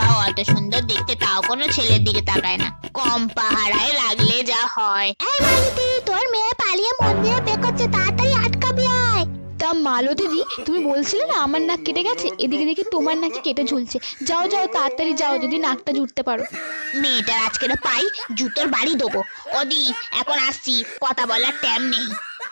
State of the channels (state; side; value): inverted; both; correlation -1.00